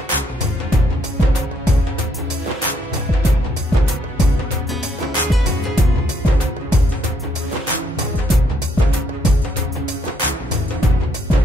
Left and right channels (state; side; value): normal; both; correlation 0.71